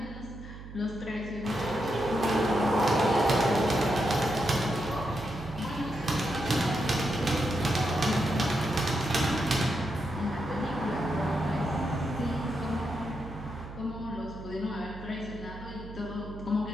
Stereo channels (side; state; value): right; noise; hum, 13 dB below the sound